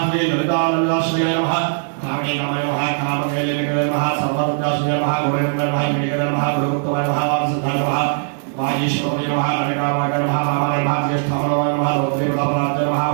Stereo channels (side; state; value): left; silent; 66 dB below the other